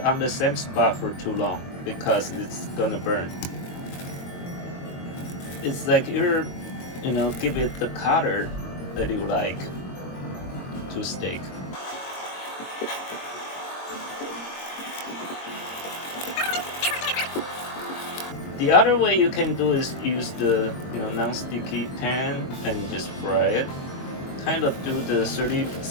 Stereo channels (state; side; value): late; right; 22 ms